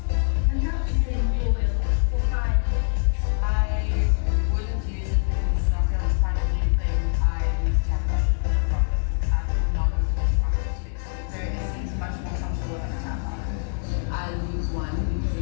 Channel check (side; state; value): right; silent; 62 dB below the other